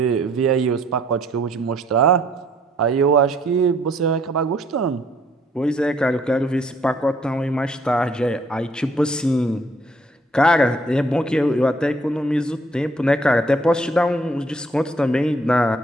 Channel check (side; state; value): both; normal; correlation 0.63